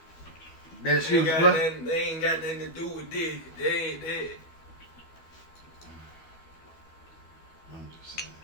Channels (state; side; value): late; right; 12 ms